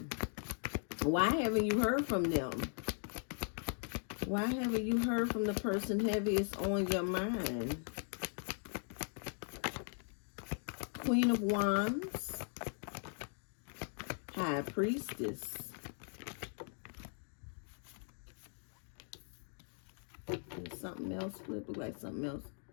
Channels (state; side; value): silent; right; 52 dB below the other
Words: why haven't you heard from them? Why haven't you heard from the person heaviest on your mind? Queen of Wands. High Priestess. And something else flip. Look like something else.